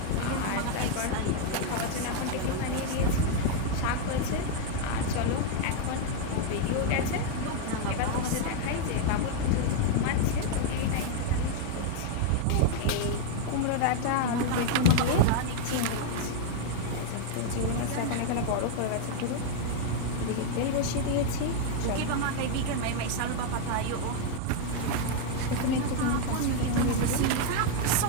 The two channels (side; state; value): both; different; correlation 0.00